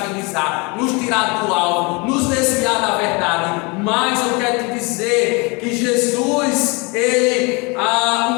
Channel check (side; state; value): right; quieter; 28.8 dB